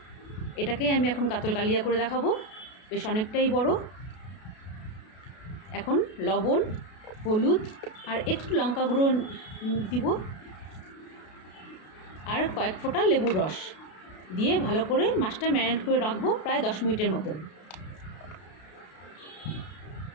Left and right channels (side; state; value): right; late; 32 ms